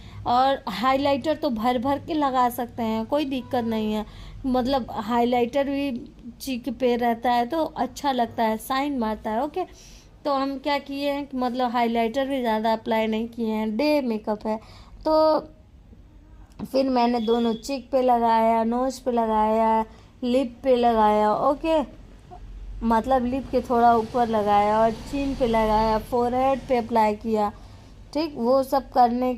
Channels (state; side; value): identical; both; correlation 1.00